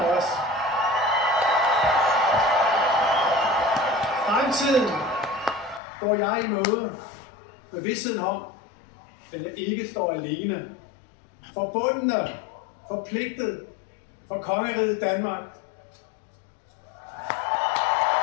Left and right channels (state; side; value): drops out; right; at 5.8 s